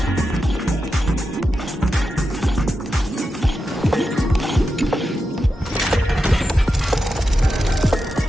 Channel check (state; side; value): normal; both; correlation 0.89